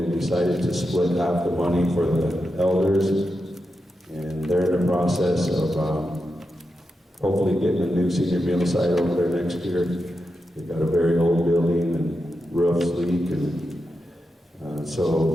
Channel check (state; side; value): normal; both; correlation 0.88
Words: decided to split half the money for the elders, and they're in the process of hopefully getting a new senior meal site over there next year. They've got a very old building and roofs leak, and